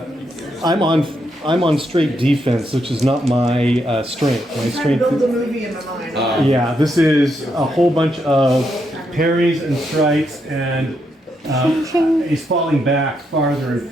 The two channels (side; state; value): both; normal; correlation 0.79